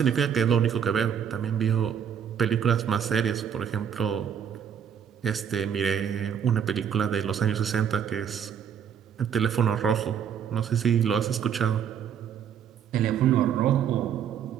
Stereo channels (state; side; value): quieter; left; 8.2 dB